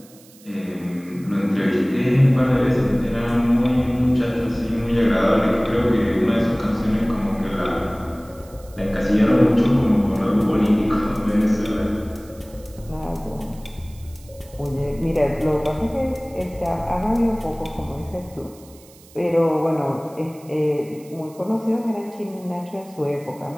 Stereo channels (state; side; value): noise; right; hiss, 25 dB below the sound